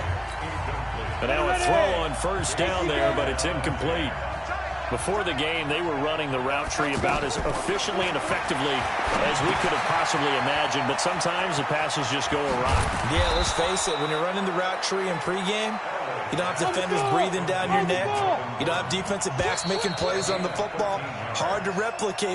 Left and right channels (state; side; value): identical; both; correlation 1.00